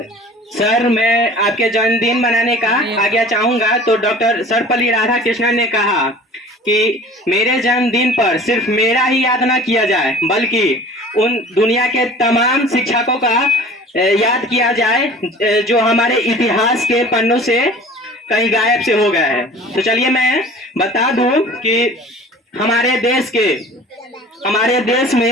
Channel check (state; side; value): normal; both; correlation 0.44